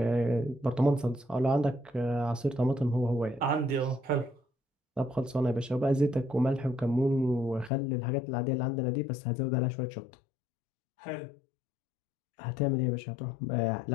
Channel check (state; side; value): drops out; right; at 7.7 s